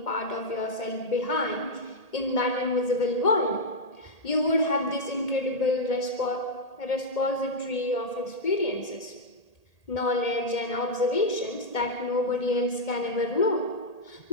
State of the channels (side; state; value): right; late; 1.8 ms